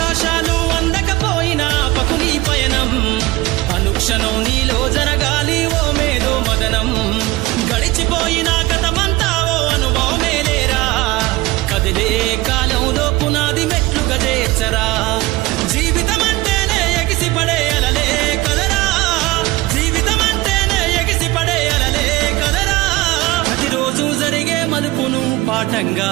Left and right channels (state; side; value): quieter; left; 19.4 dB